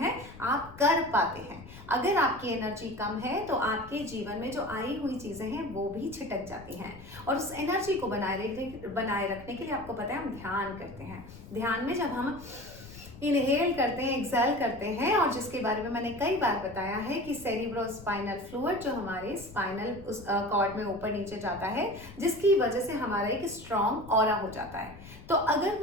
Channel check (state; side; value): noise; left; rumble, 17 dB below the sound